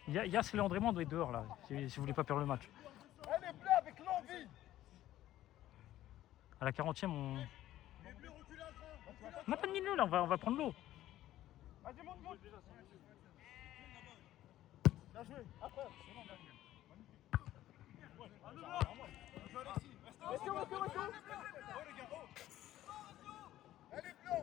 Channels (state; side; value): quieter; right; 13.8 dB